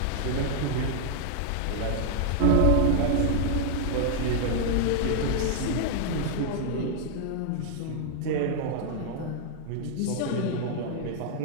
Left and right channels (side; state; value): both; different; correlation 0.00